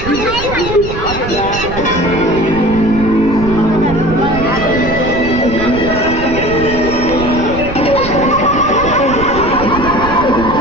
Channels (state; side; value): noise; right; rumble, 9 dB below the sound